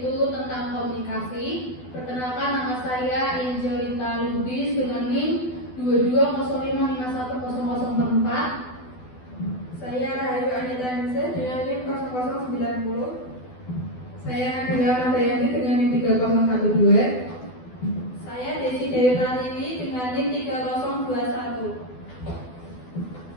tentang komunikasi. Perkenalkan, nama saya Angelita Lubis dengan NIM 2205510044. Saya Rahayu Anita Nise dengan NIM 0090. Saya Nabila Nadayanti dengan NIM 3012. Saya Desi Dewi Pratiwi dengan NIM 3021.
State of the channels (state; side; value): late; right; 12 ms